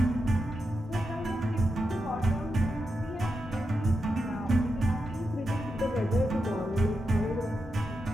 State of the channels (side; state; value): both; normal; correlation 0.87